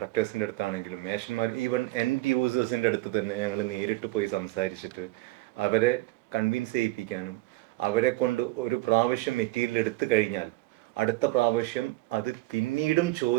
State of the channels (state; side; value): quieter; left; 19.6 dB